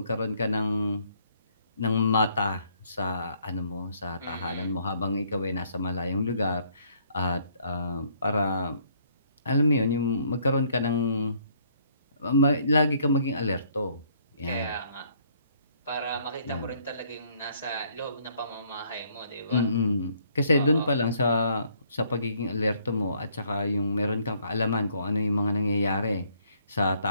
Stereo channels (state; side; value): inverted; both; correlation -0.66